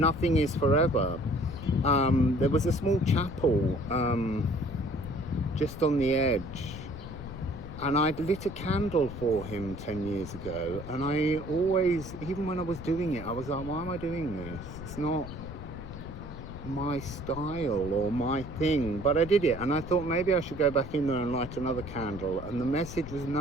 is forever. There was a small chapel just on the edge, and I'd lit a candle for him 10 years ago, and I always, even when I was doing it, I was like, why am I doing this? It's not my style or my thing, but I did it, and I thought maybe I should go back in there and light another candle, and the message was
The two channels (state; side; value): noise; left; rumble, 11 dB below the sound